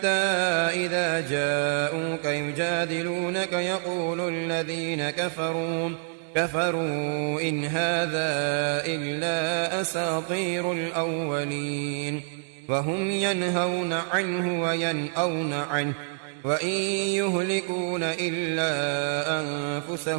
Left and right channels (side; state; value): left; silent; 60 dB below the other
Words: إذا جاءوك يجادلونك يقول الذين كفروا إن هذا إلا أساطير الأولين. وهم ينهون عنه وينأون عنه وإن يهلكون إلا